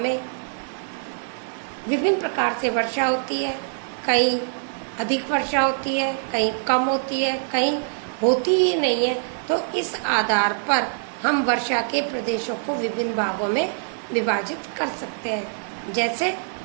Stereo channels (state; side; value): silent; left; 56 dB below the other